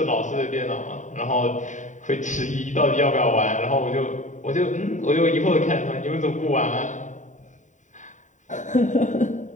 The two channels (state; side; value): late; right; 0.36 ms